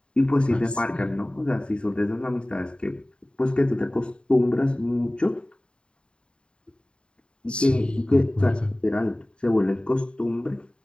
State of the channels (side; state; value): right; late; 0.052 ms